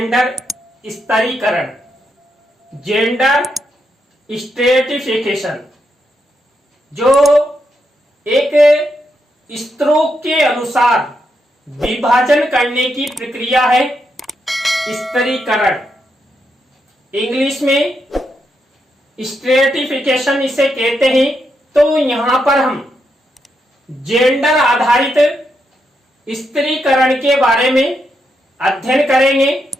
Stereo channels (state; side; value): normal; both; correlation 0.82